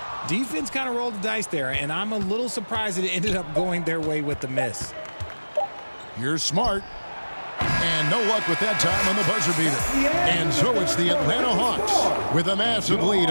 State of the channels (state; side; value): inverted; both; correlation -1.00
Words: Defense kind of rolled the dice there, and I'm a little surprised that it ended up going their way with the miss. Here's Smart. And no luck with that time on the buzzer beater. And so it's the Atlanta Hawks with a massive lead